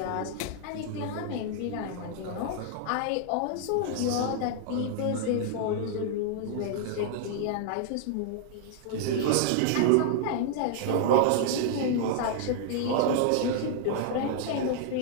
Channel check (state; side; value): different; both; correlation -0.01